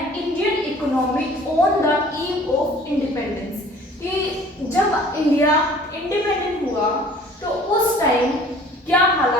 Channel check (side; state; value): both; normal; correlation 0.51